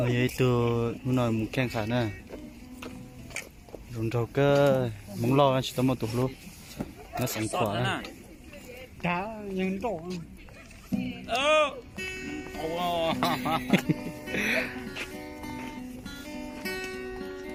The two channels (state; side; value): identical; both; correlation 1.00